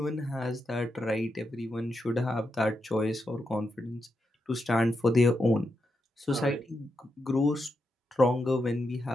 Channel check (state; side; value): normal; both; correlation 0.85